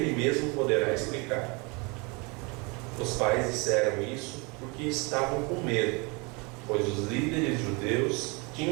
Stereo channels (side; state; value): left; quieter; 29.3 dB